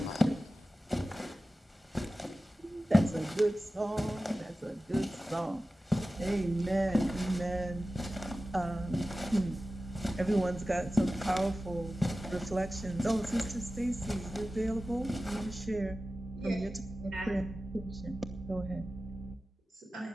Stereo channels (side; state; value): both; normal; correlation 0.95